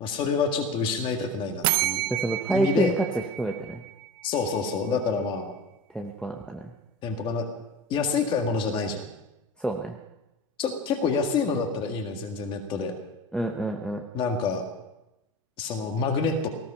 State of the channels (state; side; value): normal; both; correlation 0.33